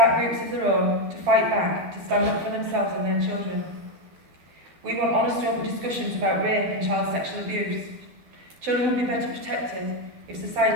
groups of their own, to fight back, to stand up for themselves and their children. We want honest open discussions about rape and child sexual abuse. Children will be better protected if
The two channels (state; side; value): late; left; 12 ms